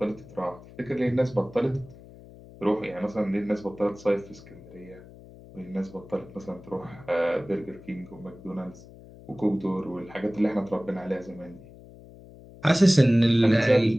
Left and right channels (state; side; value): noise; left; hum, 20 dB below the sound